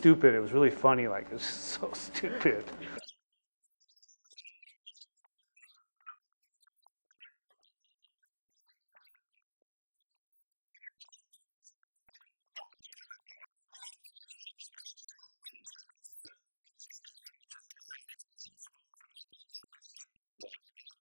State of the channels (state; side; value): inverted; both; correlation -1.00